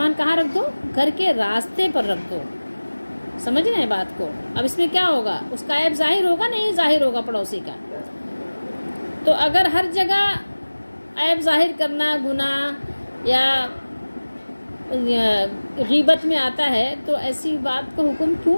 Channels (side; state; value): both; inverted; correlation -1.00